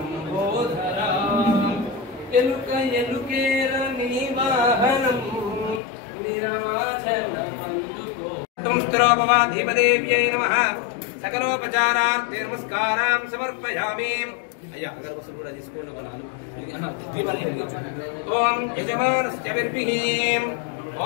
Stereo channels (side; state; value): right; drops out; at 5.8 s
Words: ఎలుక ఎలుకేర నీ వాహనం నిరాచలమందుకో. ధీమదేవ్యై నమః. సకలోపచారార్థే నమస్కారాం సమర్పయామి. అయ్యా అగరబత్తులు కూడా తీసుకోండి. ఒక 4 దీపాలు వెలిగించండి. ఓం యజమానస్య విర్భిః.